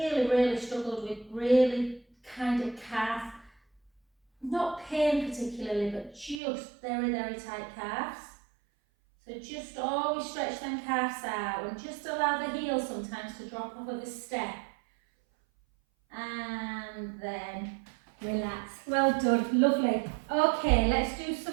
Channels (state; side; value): drops out; left; at 6.4 s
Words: struggled with really kind of calf, not pain particularly, but just very tight calves. So just always stretch them calves out and just allow the heel sometimes to drop off of a step. And then relax. Well done, lovely. Okay, let's do